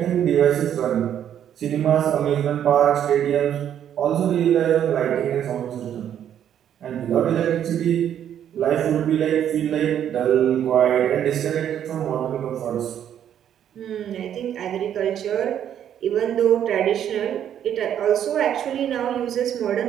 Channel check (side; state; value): left; quieter; 9.9 dB